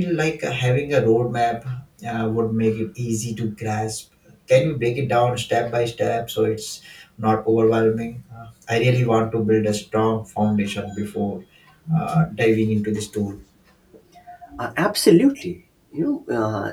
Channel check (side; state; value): both; identical; correlation 1.00